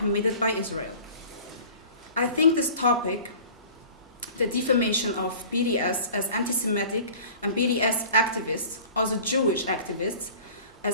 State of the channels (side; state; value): both; inverted; correlation -0.43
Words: by Israel. I think this topic, the defamation of BDS as anti-Semitic and BDS activists, also Jewish activists,